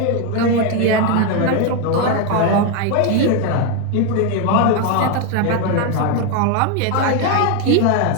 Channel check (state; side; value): different; both; correlation 0.02